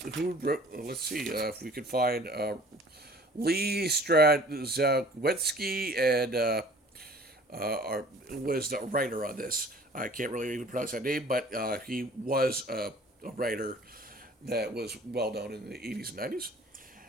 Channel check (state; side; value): normal; both; correlation 0.50